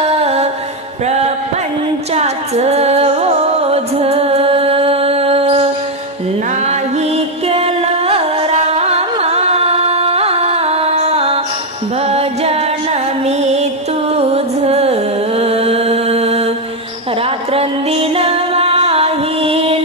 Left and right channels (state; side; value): normal; both; correlation 0.04